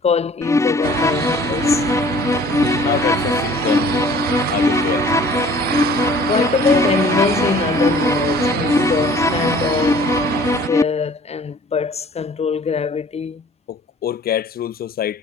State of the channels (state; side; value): normal; both; correlation 0.51